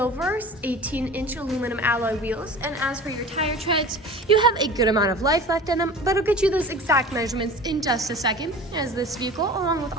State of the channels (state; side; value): normal; both; correlation 0.38